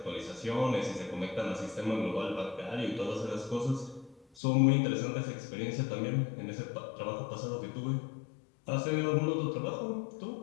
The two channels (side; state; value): right; drops out; at 4.2 s